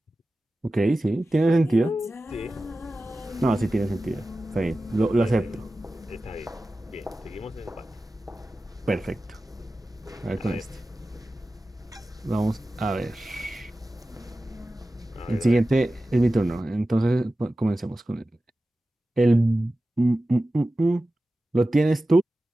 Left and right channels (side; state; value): both; normal; correlation 0.95